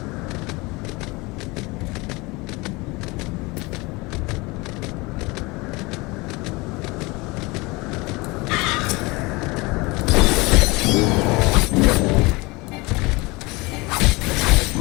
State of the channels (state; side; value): quieter; right; 24.4 dB